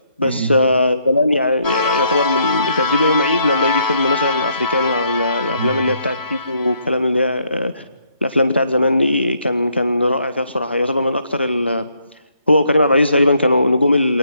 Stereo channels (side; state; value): both; inverted; correlation -0.71